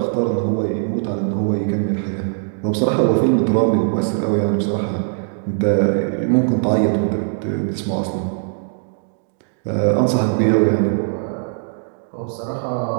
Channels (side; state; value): left; silent; digital silence